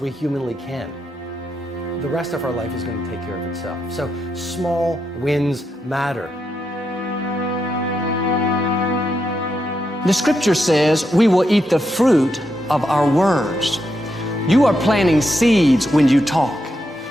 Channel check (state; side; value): normal; both; correlation 0.83